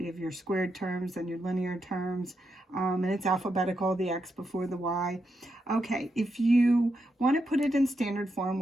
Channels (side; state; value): both; normal; correlation 0.84